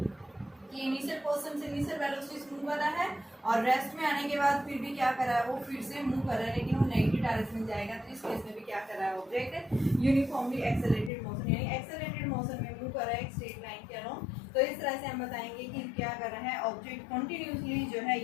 कि इनिशियल पोजीशन से इनिशियल वेलोसिटी मूव कर रहा है और रेस्ट में आने के बाद फिर भी क्या कर रहा है, वो फिर से मूव कर रहा है, लेकिन वो नेगेटिव डायरेक्शन में जाएगा। तो इस केस में भी क्या कर रहा है, ऑब्जेक्ट यूनिफॉर्मली एक्सेलरेटेड मोशन यानी एक्सेलरेटेड मोशन में मूव कर रहा है एक स्ट्रेट लाइन के अलोंग। तो इस तरह से हम बताएंगे कि क्या कर रहा है, ऑब्जेक्ट कंटिन्यूसली जो है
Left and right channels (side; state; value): right; drops out; at 11.1 s